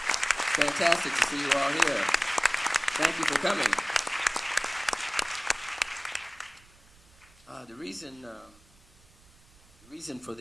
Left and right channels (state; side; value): noise; right; rumble, 27 dB below the sound